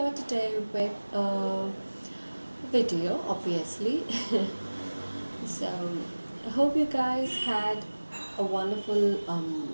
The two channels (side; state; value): both; inverted; correlation -1.00